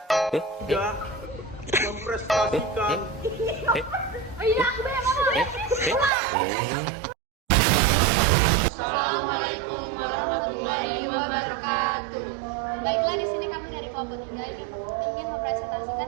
tidak memprestasikan. Assalamualaikum warahmatullahi wabarakatuh. Baiklah, di sini kami dari kelompok 3 ingin mempresentasikan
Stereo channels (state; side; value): drops out; left; at 6.1 s